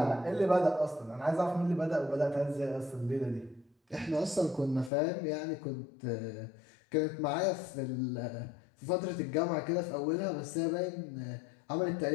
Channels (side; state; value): right; drops out; at 4.9 s